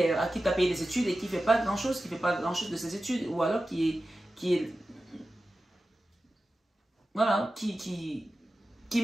à qui tu as payé des études et qui ne fait pas grand-chose, de ses études, ou alors voilà, qui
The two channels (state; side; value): normal; both; correlation 0.94